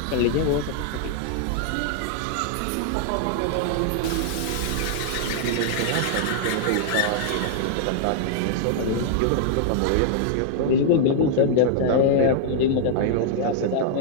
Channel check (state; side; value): different; both; correlation -0.01